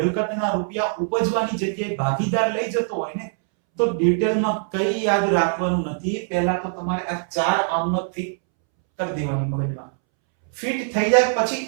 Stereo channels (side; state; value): left; silent; 64 dB below the other